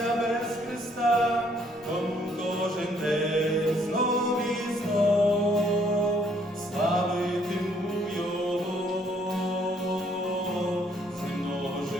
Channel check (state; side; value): normal; both; correlation 0.66